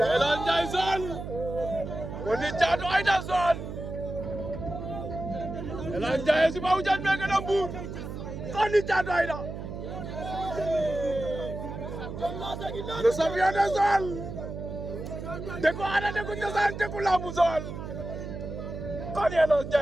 Jason Koni Caatu Aïda Son Elan Jason si ba hujan mereka nambur Koni Caatu Aïda le champion de Joal Deku ada Deku Cosaan Deku Lambu Joal Koni Elan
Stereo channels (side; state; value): right; noise; hum, 8 dB below the sound